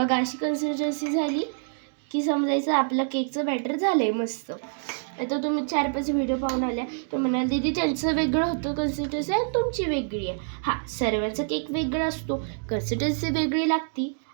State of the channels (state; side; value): silent; left; digital silence